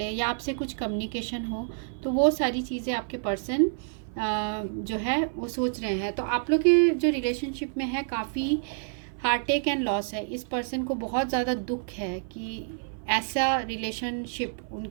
या आपसे कुछ कम्युनिकेशन हो। तो वो सारी चीज़ें आपके पर्सन जो है वो सोच रहे हैं। तो आप लोग के जो रिलेशनशिप में है काफ़ी हार्टेक एंड लॉस है। इस पर्सन को बहुत ज़्यादा दुख है कि ऐसा रिलेशनशिप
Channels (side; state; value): left; silent; 55 dB below the other